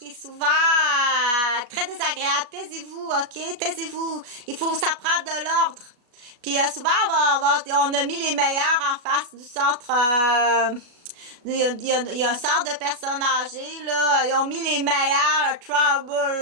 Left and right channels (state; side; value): late; left; 37 ms